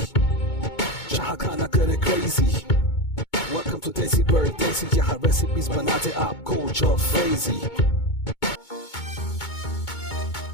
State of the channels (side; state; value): right; late; 2.2 ms